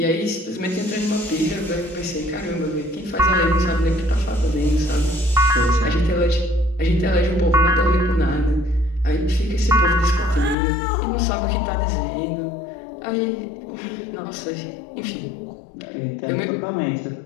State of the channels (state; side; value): drops out; right; at 10.6 s